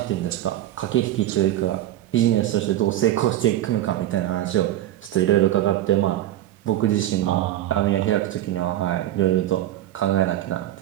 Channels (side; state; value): left; quieter; 13.3 dB